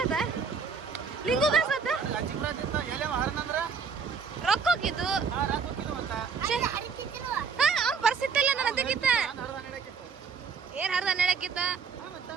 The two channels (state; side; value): quieter; left; 5.6 dB